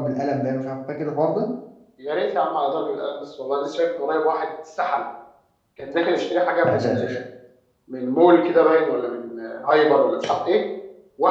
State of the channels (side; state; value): both; identical; correlation 1.00